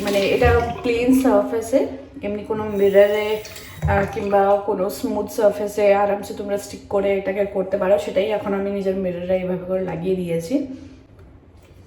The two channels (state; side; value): identical; both; correlation 1.00